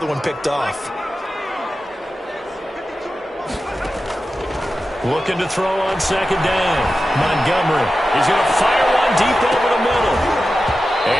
one picked off. Looking to throw on second down. Montgomery is going to fire one deep over the middle.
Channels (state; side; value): normal; both; correlation 0.93